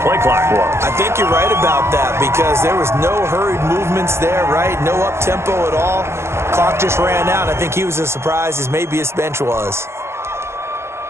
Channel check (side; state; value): left; late; 0.13 ms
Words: clock was. I think you're right about that because there was no hurried movements there, right? No up-tempo at all. Clock just ran out. I think he was as surprised as maybe his bench was.